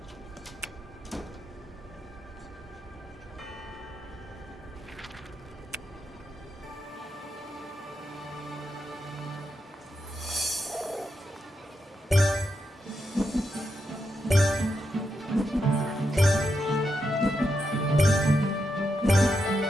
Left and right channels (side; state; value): both; normal; correlation 0.84